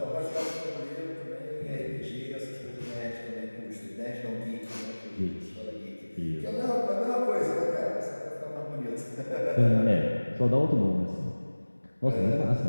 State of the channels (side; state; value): both; inverted; correlation -1.00